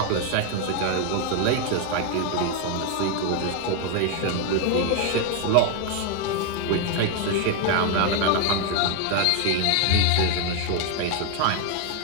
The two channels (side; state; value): both; different; correlation 0.01